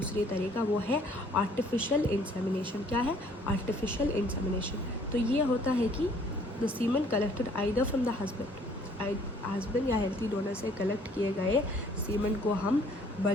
तरीका, वो है आर्टिफिशियल इंसेमिनेशन। क्या है आर्टिफिशियल इंसेमिनेशन? तो ये होता है कि the semen collected either from the husband या हेल्थी डोनर से कलेक्ट किए गए सीमन को हम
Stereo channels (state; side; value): normal; both; correlation 0.59